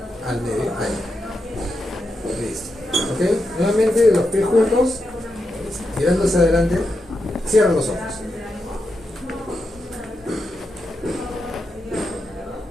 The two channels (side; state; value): both; normal; correlation 0.86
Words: al medio, ahí. Listo. ¿Ok? Nuevamente los pies juntos, mirando hacia adelante, cierra los ojos.